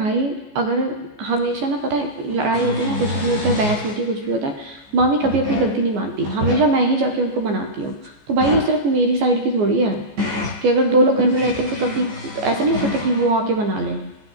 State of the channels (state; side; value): late; left; 14 ms